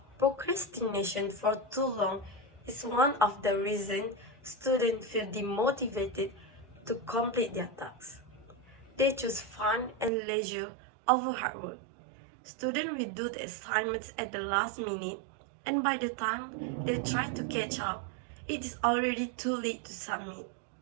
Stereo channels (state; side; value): drops out; left; at 10.1 s